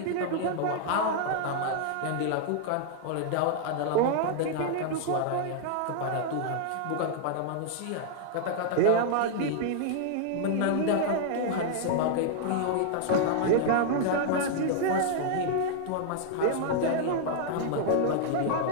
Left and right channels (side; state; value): both; different; correlation -0.01